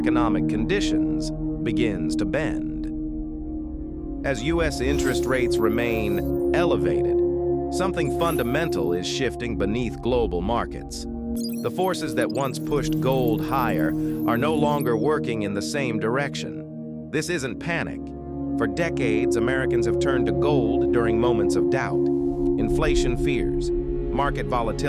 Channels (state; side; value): identical; both; correlation 1.00